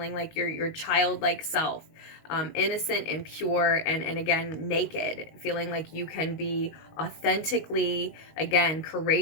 like your childlike self, innocent and pure, and again, naked, feeling like you can be authentically, again,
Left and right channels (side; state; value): right; late; 19 ms